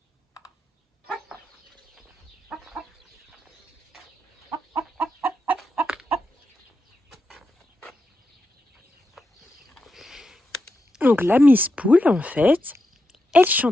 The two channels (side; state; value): both; normal; correlation 0.86